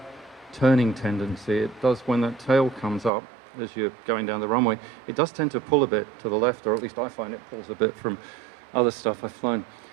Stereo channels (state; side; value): drops out; left; at 3.1 s